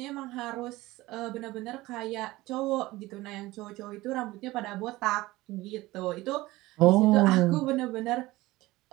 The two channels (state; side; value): quieter; left; 18.9 dB